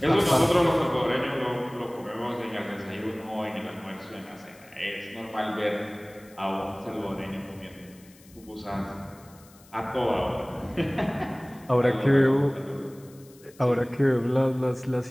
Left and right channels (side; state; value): left; noise; hiss, 26 dB below the sound